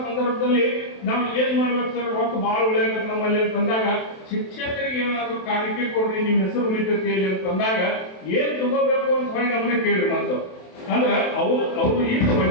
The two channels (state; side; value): late; right; 27 ms